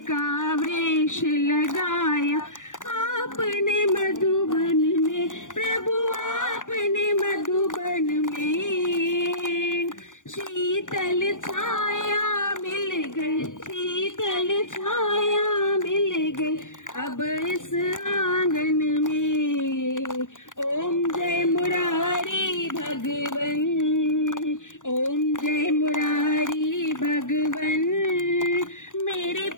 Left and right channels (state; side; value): late; right; 0.87 ms